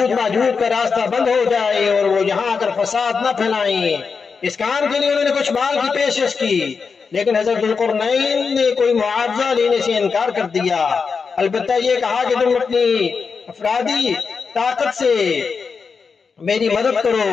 ماجوج کا راستہ بند ہو جائے اور وہ یہاں آ کر فساد نہ پھیلائیں۔ اس کام کے لیے انہوں نے کچھ مال کی پیشکش کی، لیکن حضرت ذوالقرنین نے کوئی معاوضہ لینے سے انکار کر دیا، البتہ یہ کہا کہ تم اپنی افرادی طاقت سے میری مدد کرو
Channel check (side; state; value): right; quieter; 5.3 dB